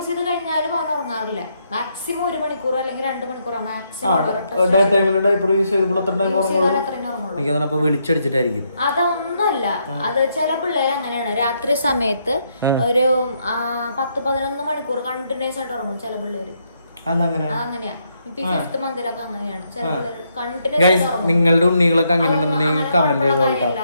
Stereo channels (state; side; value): inverted; both; correlation -0.76